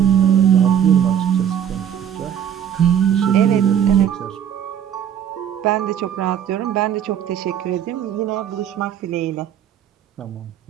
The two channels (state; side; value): quieter; left; 9.2 dB